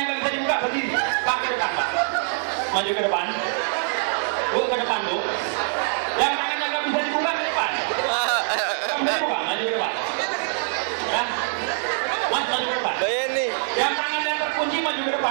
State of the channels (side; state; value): left; silent; digital silence